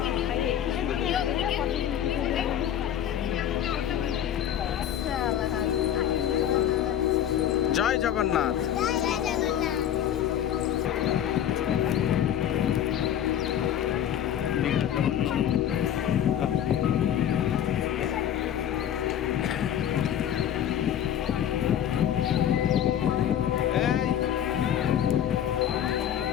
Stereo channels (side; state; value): right; quieter; 10.3 dB